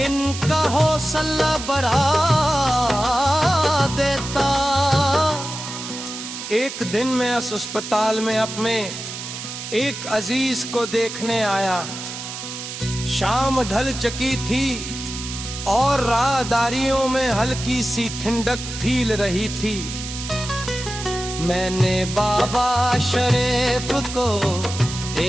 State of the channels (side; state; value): right; noise; hiss, 9 dB below the sound